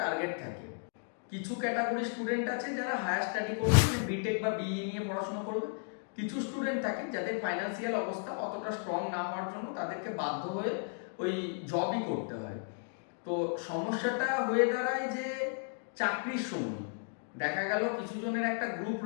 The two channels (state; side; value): silent; right; 55 dB below the other